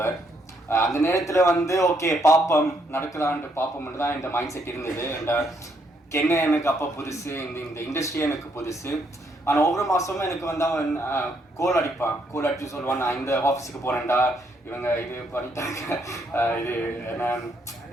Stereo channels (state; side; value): normal; both; correlation 0.73